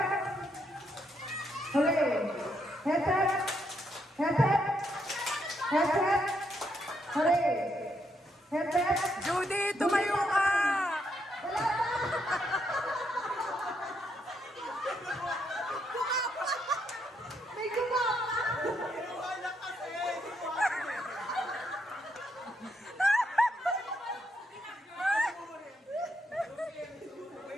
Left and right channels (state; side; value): normal; both; correlation 0.77